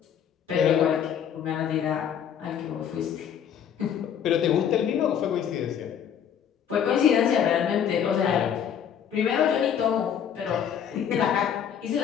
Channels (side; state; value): right; quieter; 8.6 dB